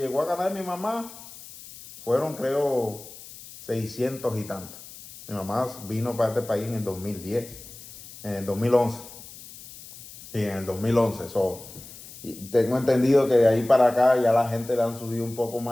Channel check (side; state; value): left; noise; hiss, 17 dB below the sound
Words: a ganar mi mamá fueron, creo, 600 y tanto. Mi mamá vino para este país en el 2010, en el 2011. Y en el 2011, y tengo entendido que de ahí para acá ya la gente le han subido un poco